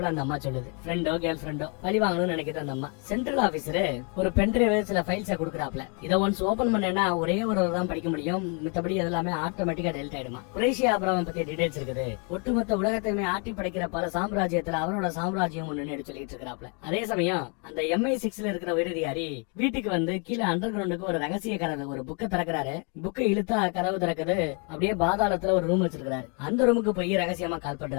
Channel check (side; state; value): right; quieter; 36.5 dB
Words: அந்த அம்மா சொல்லுது. ஃப்ரெண்டோ கேர்ள் ஃபிரெண்டோ பழி வாங்கணும்னு நினைக்கிற அந்த அம்மா. சென்ட்ரல் ஆபீசர் ஒரு பென்ட்ரைவ் சில ஃபைல்ஸை கொடுக்குறாப்ல, இதை ஒன்ஸ் ஓபன் பண்ணேன்னா ஒரே ஒரு தான் படிக்க முடியும், மித்தபடி எல்லாமே ஆட்டோமேட்டிக்கா டெலிட் ஆயிடுமா. குறைஷி ஆபிரகாம் பத்தி டீடைல்ஸ் இருக்குது. ஒட்டுமொத்த உலகத்தையுமே ஆட்டி படைக்கிற பல சாம்ராஜ்யத்துல அவனோட சாம்ராஜ்யம் ஒண்ணு சொல்லிட்டு இருக்கிறாப்ல. அதே சமயம் அந்த MI6ல இருக்கிற உயரதிகாரி வீட்டுக்கு வந்து கீழே அண்டர் கிரவுண்டுக்கு ஒரு ரகசிய கதவு, ஒரு புக்கை திறக்கிறாரு. புக்கை இழுத்தா கதவு திறக்குது. அப்படியே பாதாளத்துல ஒரு ரூம் வச்சிருக்காரு. அந்த ரூமுக்கு போய் ரகசியமா கால்